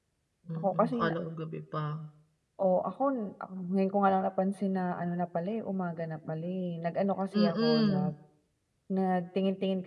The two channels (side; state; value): both; identical; correlation 1.00